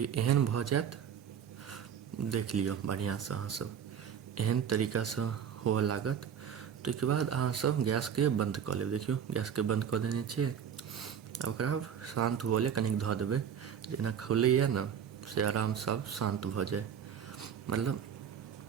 एहन भऽ जायत, देख लियौ बढ़िआँसँ अहाँ सब, एहन तरीकासँ हुअ लागत। ताहिके बाद अहाँ सब गैसके बंद कऽ लेब। देखियौ गैसके बंद कऽ देने छियै, आब ओकरा शान्त हुअ लेल कनिक धऽ देबै, जेना खौलैए ने से आरामसँ शान्त भऽ जाए, मतलब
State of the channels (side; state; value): left; quieter; 8.3 dB